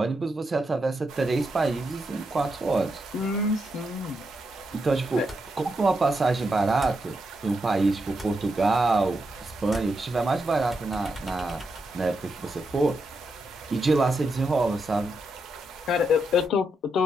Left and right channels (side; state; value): both; normal; correlation 0.84